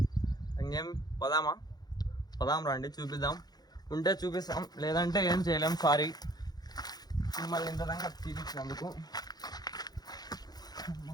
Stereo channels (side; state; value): right; late; 0.19 ms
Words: ఇంకేం పదాం రండి, చూపిద్దాం. ఉంటే చూపిస్తాం, లేదంటే ఏం చేయలేం. సారీ మిమ్మల్ని ఇంత దాకా చూపించినందుకు.